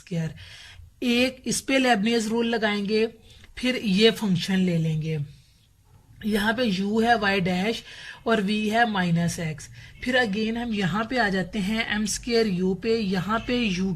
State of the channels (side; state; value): both; identical; correlation 1.00